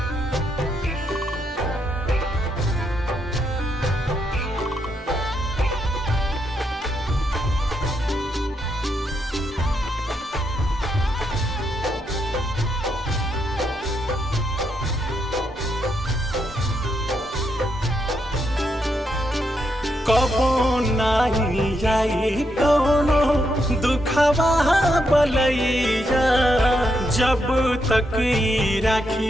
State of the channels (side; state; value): both; normal; correlation 0.80